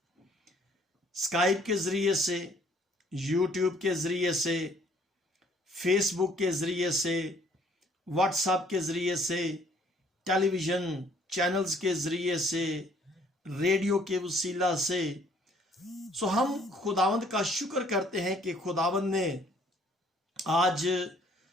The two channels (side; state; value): both; normal; correlation 0.61